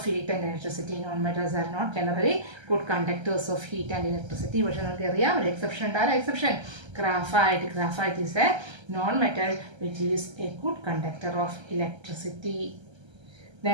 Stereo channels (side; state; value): left; late; 1.3 ms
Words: heat and electricity. Non metals are not generally good conductors of heat and electricity. പക്ഷേ നമുക്കറിയാം ഒരു എക്സെപ്ഷൻ ഉണ്ട്. ആ exception graphite. Graphite is a non metal which is a good conductor of electricity.